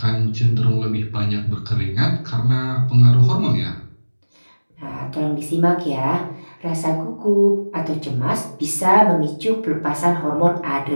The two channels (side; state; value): both; inverted; correlation -1.00